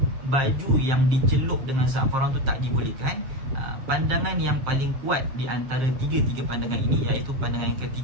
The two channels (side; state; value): left; late; 7.6 ms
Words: baju yang dicelup dengan za'faran tu tak dibolehkan? Pandangan yang paling kuat di antara tiga pandangan ini, iaitu pandangan yang